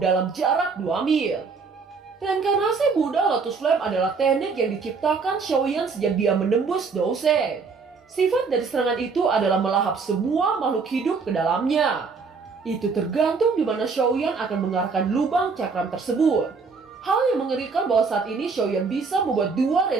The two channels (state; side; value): quieter; left; 4.9 dB